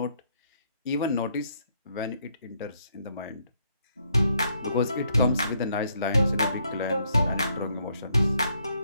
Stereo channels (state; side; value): inverted; both; correlation -0.72